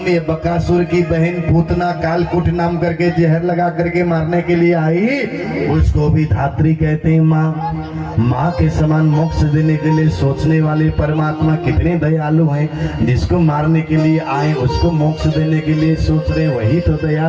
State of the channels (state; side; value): identical; both; correlation 1.00